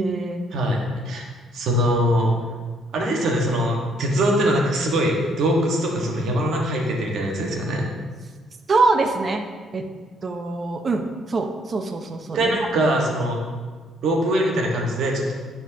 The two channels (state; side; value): normal; both; correlation 0.68